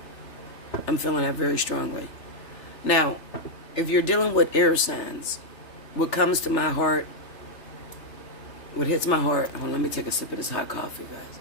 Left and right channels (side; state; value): right; late; 3.3 ms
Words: I'm feeling that very strongly. Now, if you're dealing with air signs, what comes to my heart, what hits my heart, hold on, let me take a sip of this hot coffee,